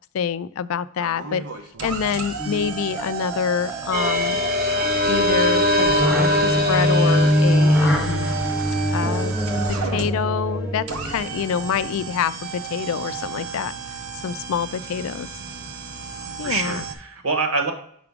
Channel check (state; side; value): normal; both; correlation 0.23